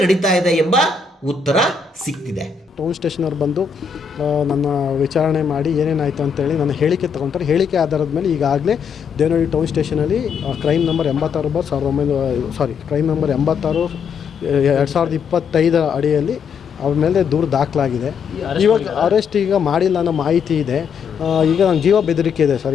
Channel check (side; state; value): right; quieter; 6.0 dB